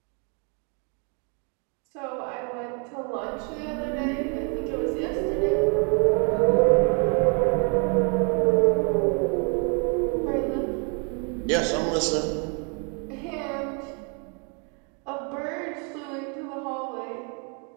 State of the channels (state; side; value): quieter; left; 37.2 dB